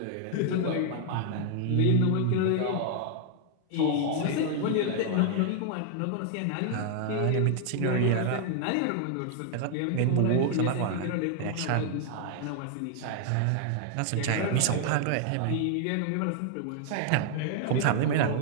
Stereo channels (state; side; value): different; both; correlation 0.00